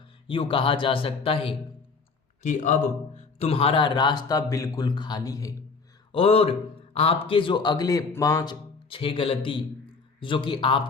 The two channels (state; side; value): quieter; right; 4.6 dB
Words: यूँ कहा जा सकता है कि अब तुम्हारा रास्ता बिल्कुल खाली है और आपके जो अगले 5-6 गलती जो कि